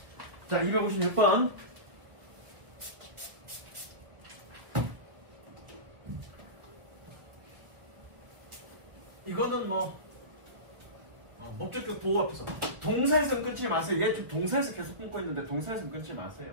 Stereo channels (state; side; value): late; left; 1.7 ms